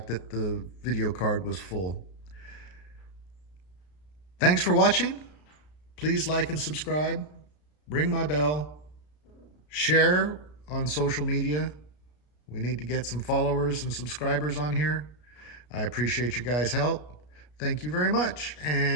that the video card was full. Thanks for watching. Please like and subscribe. Ring my bell. Share on social media. We need to get some followers and subscribers on here. I appreciate you guys' help. Thank you very much.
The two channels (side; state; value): right; late; 33 ms